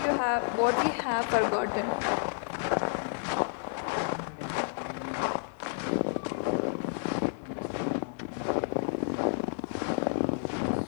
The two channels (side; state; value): right; silent; 57 dB below the other